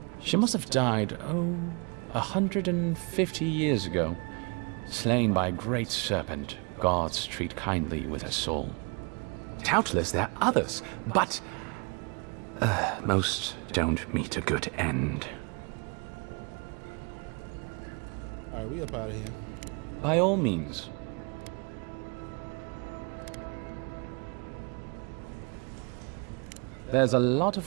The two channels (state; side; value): quieter; left; 32.9 dB